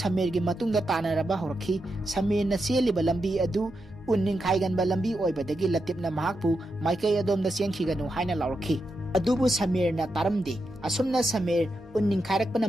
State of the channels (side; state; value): both; normal; correlation 0.86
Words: matungda tanaraba horaki Samirna seliba lambi adu unning khaiganba lambi oibadagi latipna mahakpu maikai adomda siangkhiganu haina lauraki adubu Samirna taramde asumna Samir unning khairakpana